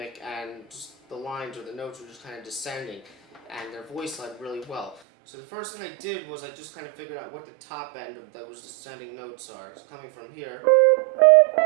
and just the lines or the notes were just kind of descending and their voice led really well. So the first thing I did was I just kind of figured out what the top end of those descending notes are. It's coming from here.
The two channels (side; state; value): left; drops out; at 5.0 s